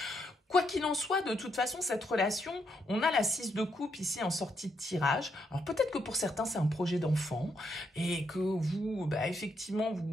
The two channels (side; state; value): both; normal; correlation 0.77